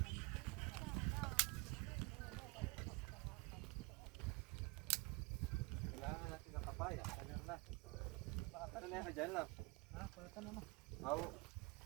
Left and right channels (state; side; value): quieter; left; 26.2 dB